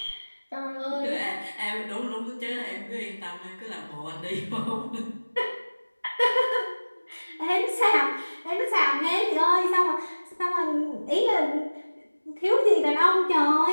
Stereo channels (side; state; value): both; inverted; correlation -1.00